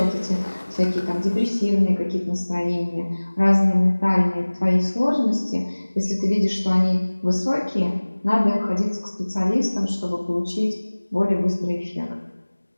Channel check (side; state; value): both; inverted; correlation -1.00